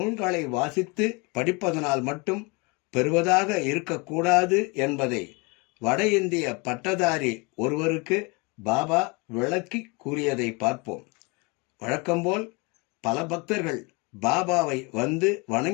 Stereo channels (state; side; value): quieter; right; 28.8 dB